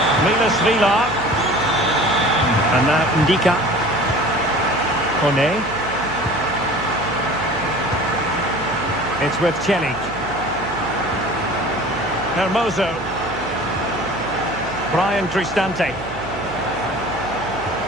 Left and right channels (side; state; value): right; noise; hum, 16 dB below the sound